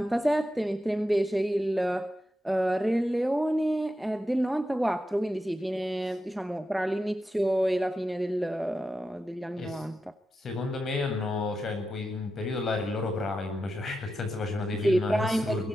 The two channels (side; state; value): both; normal; correlation 0.89